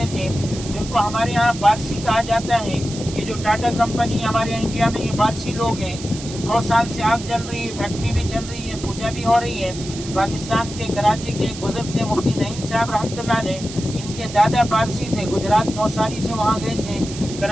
تھے، جن کو ہمارے یہاں پارسی کہا جاتا ہے۔ یہ جو ٹاٹا کمپنی ہمارے انڈیا میں، یہ پارسی لوگ ہیں۔ 100 سال سے آگ جل رہی ہے، فیکٹری بھی چل رہی ہے، پوجا بھی ہو رہی ہے۔ پاکستان کے کراچی کے ایک بزرگ تھے مفتی نعیم صاحب رحمۃ اللہ علیہ، ان کے دادا پارسی تھے، گجرات نوساری سے وہاں گئے تھے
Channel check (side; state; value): right; noise; hiss, 12 dB below the sound